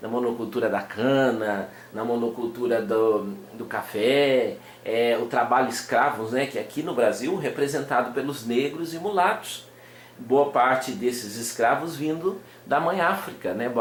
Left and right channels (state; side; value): identical; both; correlation 1.00